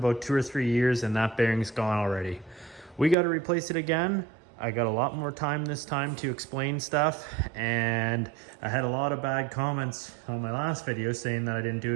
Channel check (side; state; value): left; drops out; at 3.2 s